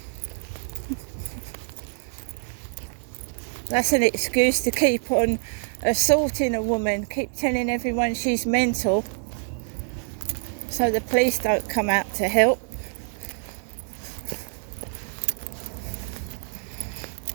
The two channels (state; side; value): silent; left; 55 dB below the other